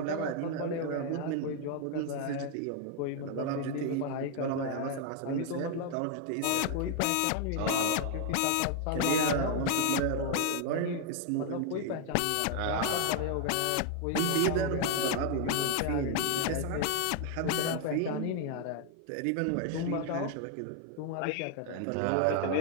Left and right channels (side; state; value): both; different; correlation 0.00